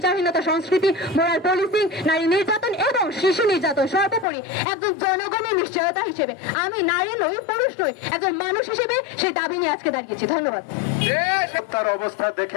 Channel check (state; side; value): drops out; right; at 4.2 s